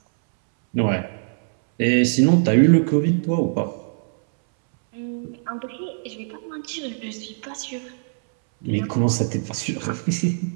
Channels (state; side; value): silent; left; 64 dB below the other